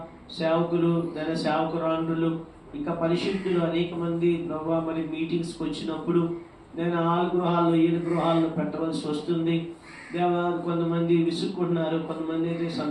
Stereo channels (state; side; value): identical; both; correlation 1.00